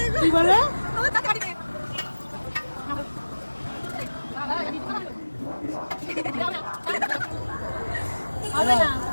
কি বলে আমার টাকা দিবে হবে না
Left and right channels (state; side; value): inverted; both; correlation -1.00